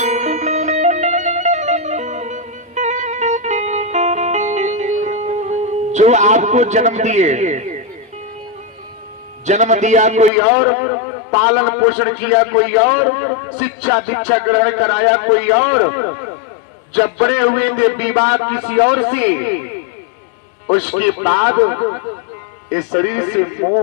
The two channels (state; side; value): drops out; right; at 10.3 s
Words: जो आपको जन्म दिया कोई और, पालन पोषण किया कोई और, शिक्षा दीक्षा ग्रहण कराया कोई और, जब बड़े हुए थे विवाह किसी और से, उसके बाद इस शरीर से